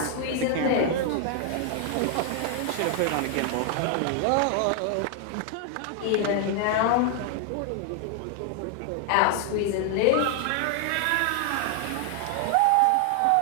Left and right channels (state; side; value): different; both; correlation 0.00